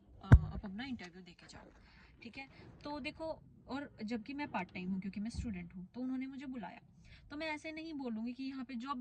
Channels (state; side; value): identical; both; correlation 1.00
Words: आप अपना इंटरव्यू दे के जाओ। ठीक है। तो देखो, और जबकि मैं पार्ट टाइम हूँ क्योंकि मैं स्टूडेंट हूँ, तो उन्होंने मुझे बुलाया। तो मैं ऐसे नहीं बोलूँगी कि यहाँ पे जॉब